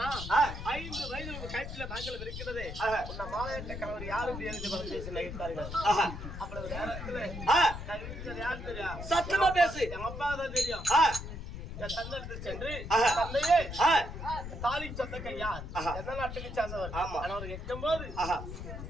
5 வயது கயிற்றில தாங்கள் இருக்கிறதே உன்னை மாலையிட்ட கணவர் யாரும் எழுதி பேசி நகைத்தார்கள். அப்பொழுது நேரத்தில் யார் தெரியும்? சத்தமா பேசு. எங்க அப்பா தான் தெரியும். தந்தை சென்று தந்தையே தாலி சொந்தக்க யார் எந்த நாட்டுக்கு சேர்ந்தவர் அவர் கேட்கும் போது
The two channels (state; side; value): noise; left; rumble, 8 dB below the sound